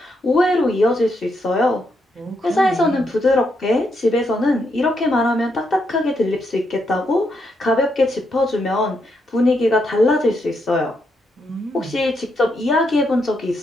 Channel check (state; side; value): normal; both; correlation 0.80